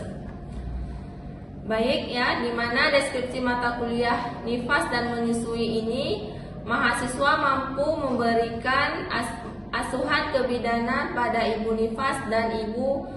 Baik ya, dimana deskripsi mata kuliah nifas dan menyusui ini, mahasiswa mampu memberikan asuhan kebidanan pada ibu nifas dan ibu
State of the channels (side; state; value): both; identical; correlation 1.00